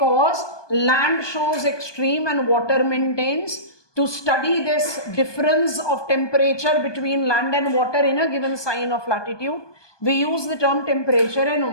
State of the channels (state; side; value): late; right; 1.2 ms